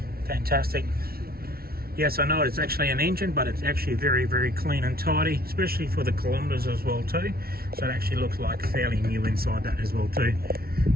Fantastic. Yes, I know it's actually an engine, but it's actually very, very clean and tidy, especially for the kilometres as well too. So it actually looks like fairly new inside that as well too.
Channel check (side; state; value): left; late; 0.44 ms